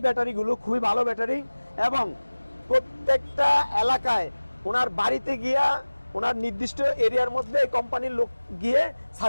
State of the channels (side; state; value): both; inverted; correlation -1.00